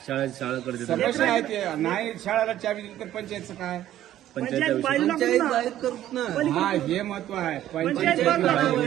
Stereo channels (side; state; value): left; quieter; 12.6 dB